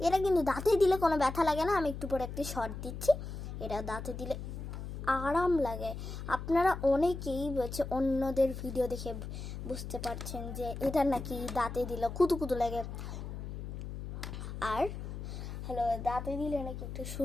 এটা কিন্তু দাঁতে দিলে কোনো ব্যথা লাগে না। আমি একটু পরে একটি শর্ট দিচ্ছি, এটা দাঁতে দিলে আরাম লাগে। আপনারা অনেকেই বলছে, অন্যদের ভিডিও দেখে বুঝতে পারছেন যে এটা নাকি দাঁতে দিলে কুতুকুতু লাগে, আর হ্যালো দাঁতে দিলে নাকি একটু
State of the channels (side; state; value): left; noise; hum, 8 dB below the sound